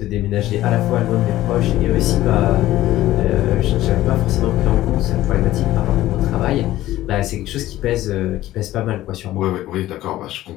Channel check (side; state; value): right; quieter; 15.0 dB